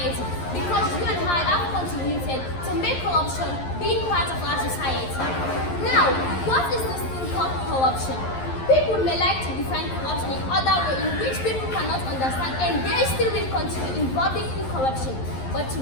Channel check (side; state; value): right; late; 11 ms